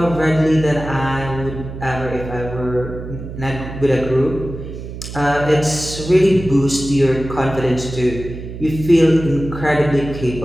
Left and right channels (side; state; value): right; noise; hum, 10 dB below the sound